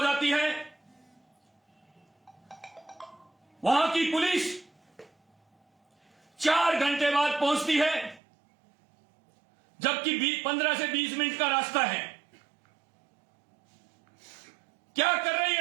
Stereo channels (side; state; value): left; drops out; at 8.2 s